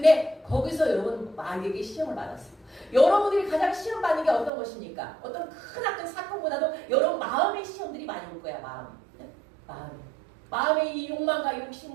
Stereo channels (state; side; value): drops out; left; at 4.5 s